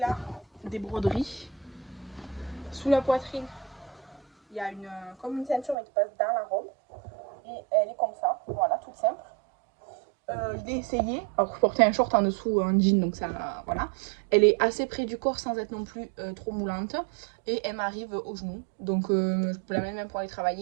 des broderies. Sous la poitrine, il y a comme une ceinture mais qui passe dans la robe. Et elle est comme ça, voilà, toute simple. Je l'ai essayé, alors je portais un short en dessous, un jean, donc ça, voilà. Elle est assez près du corps sans être non plus trop moulante. Et elle m'arrive au genou, donc je peux la mettre même pour aller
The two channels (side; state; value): left; drops out; at 5.8 s